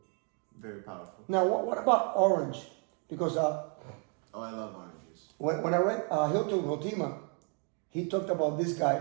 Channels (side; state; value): left; quieter; 38.4 dB